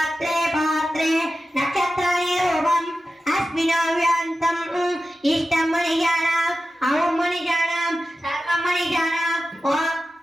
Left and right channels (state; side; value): normal; both; correlation 0.93